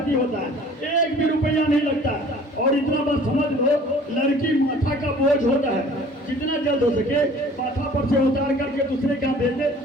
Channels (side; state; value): both; normal; correlation 0.50